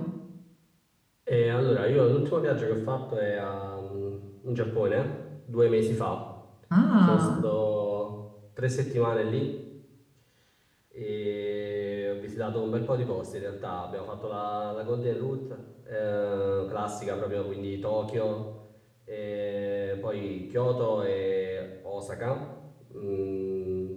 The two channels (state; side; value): identical; both; correlation 1.00